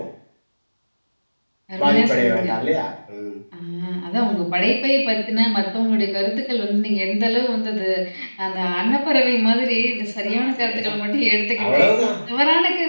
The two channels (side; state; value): both; inverted; correlation -1.00